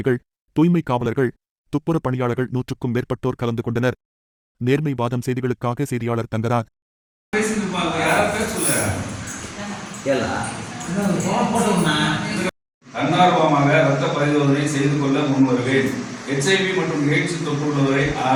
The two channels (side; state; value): both; identical; correlation 1.00